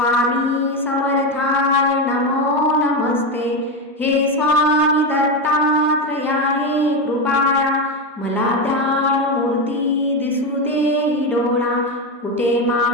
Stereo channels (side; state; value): both; normal; correlation 0.13